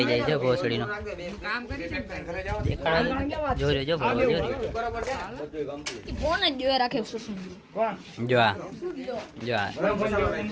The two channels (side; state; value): both; identical; correlation 1.00